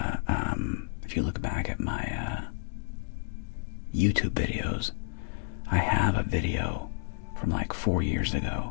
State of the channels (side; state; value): right; silent; digital silence